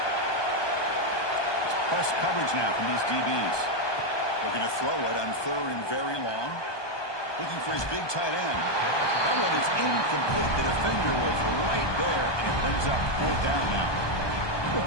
It's press coverage now from these DBs. Looking to throw it on 3rd and very long. Looking for his big tight end. That one is incomplete. The defender was right there, and it brings up 4th down now. Well,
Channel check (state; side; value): late; right; 1.2 ms